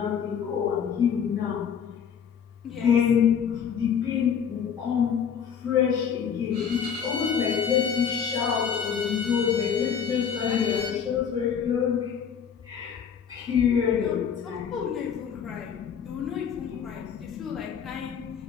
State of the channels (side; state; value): right; quieter; 7.6 dB